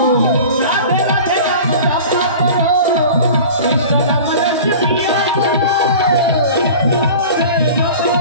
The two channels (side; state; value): both; inverted; correlation -0.39